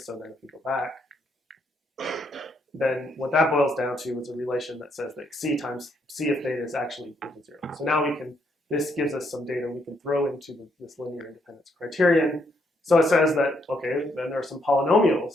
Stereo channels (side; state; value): both; normal; correlation 0.74